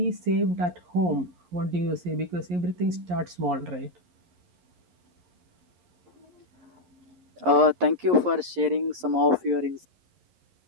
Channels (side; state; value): left; late; 11 ms